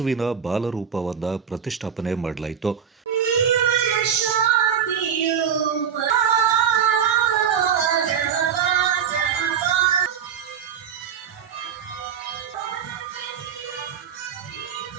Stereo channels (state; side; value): quieter; left; 7.9 dB